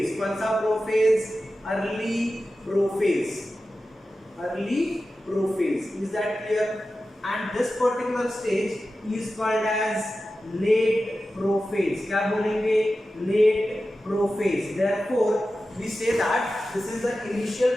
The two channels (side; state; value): both; normal; correlation 0.93